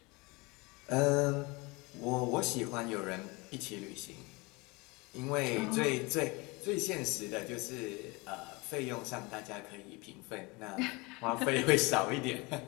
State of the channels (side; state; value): right; quieter; 25.8 dB